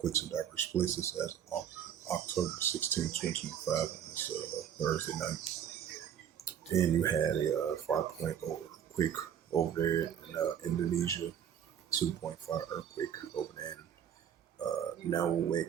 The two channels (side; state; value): left; quieter; 9.1 dB